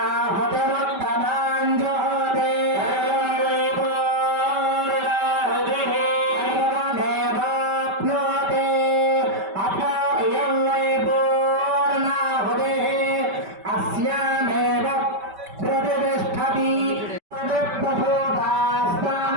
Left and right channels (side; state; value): left; late; 5.1 ms